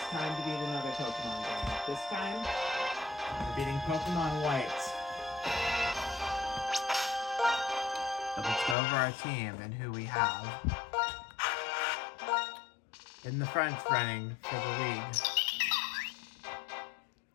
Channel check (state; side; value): drops out; right; at 8.8 s